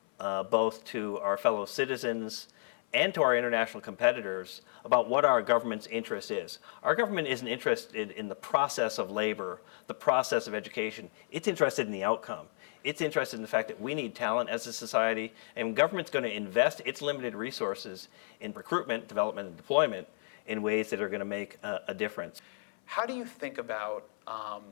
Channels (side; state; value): right; silent; 56 dB below the other